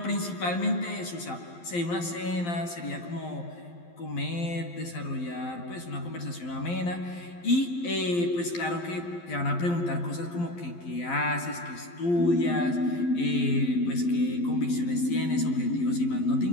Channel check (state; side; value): late; right; 12 ms